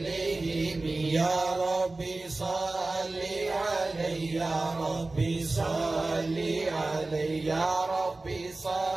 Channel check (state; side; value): quieter; left; 3.2 dB